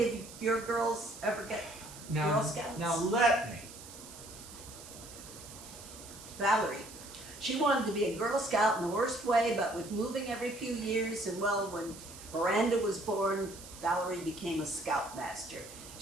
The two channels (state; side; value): noise; right; hiss, 15 dB below the sound